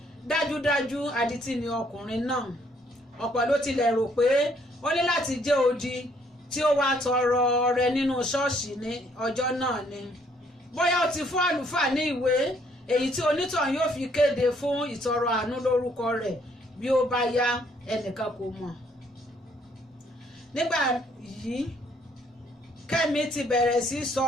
dájúdájú adití ni ọkùnrin náà. Ọ̀pọ̀ ló tilẹ̀ rò pé ó ní láti jẹ́ odi tí ó wá tọrọ ọrẹ nínú ṣọ́ọ̀ṣì ní ọjọ́ náà ni. Bóyá ó ti fún àlùfáà ní ìwé èyí tí onítọ̀hún yóò fi kéde fún ìtọrọ àánú lórúkọ rẹ̀ bí ó bá yá, ẹnìkan kò mọ̀. Nígbà yìí Kẹ́mi ti bẹ̀rẹ̀ sí sọ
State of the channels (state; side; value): normal; both; correlation 0.67